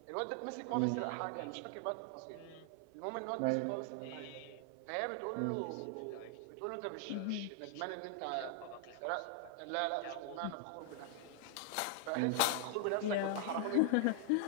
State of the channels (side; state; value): both; different; correlation 0.00